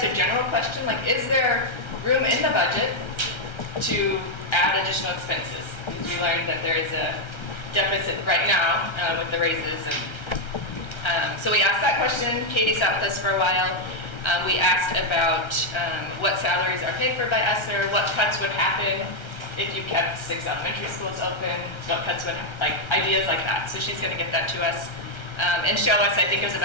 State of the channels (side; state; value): right; late; 1.3 ms